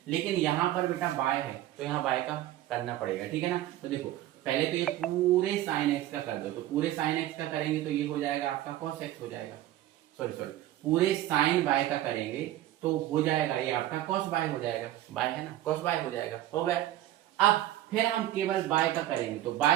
लेकिन यहाँ पर बेटा y है तो यहाँ y का करना पड़ेगा, ठीक है ना। तो देखो पहले तो ये पूरे साइन x का कर दो, तो पूरे साइन x का करेंगे तो ये हो जाएगा आपका cos x हो जाएगा, सॉरी पूरे साइन y का करेंगे तो हो जाएगा ये आपका cos y हो जाएगा, y है ना, cos y हो जाएगा, हो गया। अब फिर हम केवल y का करेंगे, तो y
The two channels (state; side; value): quieter; left; 14.1 dB